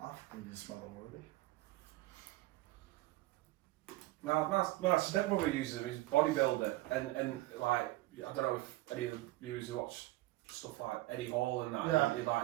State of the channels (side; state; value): left; quieter; 18.3 dB